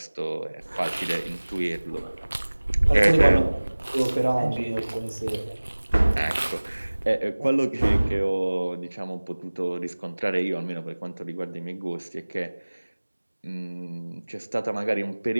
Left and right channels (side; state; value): both; inverted; correlation -1.00